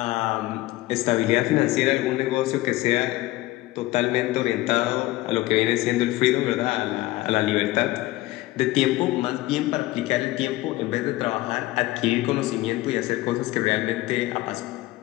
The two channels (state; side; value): quieter; right; 18.0 dB